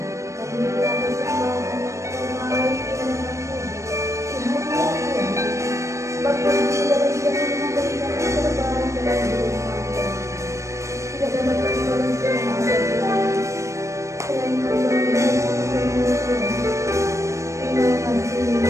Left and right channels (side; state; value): left; late; 0.15 ms